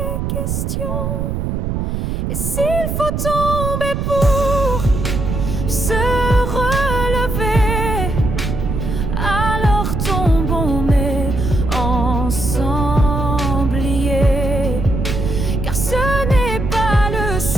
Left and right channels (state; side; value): noise; right; rumble, 2 dB below the sound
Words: questions. Et s'il faut tomber pour se relever, alors tombons mais ensemble liés. Car ce n'est pas le